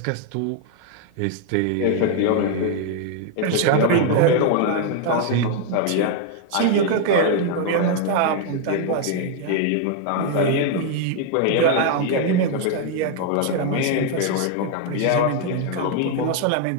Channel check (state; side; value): different; both; correlation 0.00